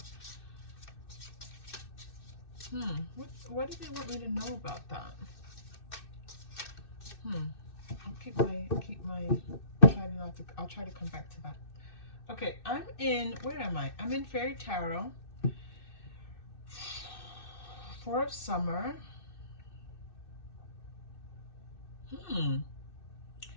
what do they want me to know about that? I'll try to come back to that. Okay, where am I? I'm in Fairy Tarot. 4 of Summer.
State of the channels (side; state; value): right; late; 2.6 ms